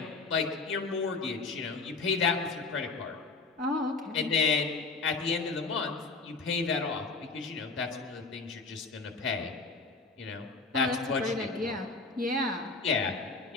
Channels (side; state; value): right; quieter; 4.0 dB